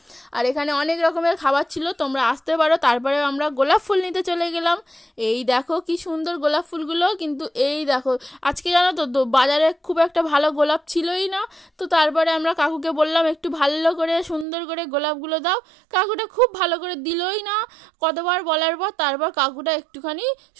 আর এখানে অনেক রকমের খাবার ছিল, তোমরা আসতে পারো। তারপরে আমরা গোলাপ ফুল নিতে চলে গেলাম। এই দেখো কি সুন্দর গোলাপ ফুলগুলো, কিন্তু এই দেখো আজকে জানো তো বাজারে খুব একটা ভালো গোলাপ ছিলই না। তো তারপরে আমরা কাকুকে বললাম একটু ভালো করে সুন্দর করে গোলাপগুলো দাও। কাকুটা খুব ভালো করে দিলই না, কতবার বলার পর তারপর কাকুটা একটুখানি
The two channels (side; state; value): left; drops out; at 14.5 s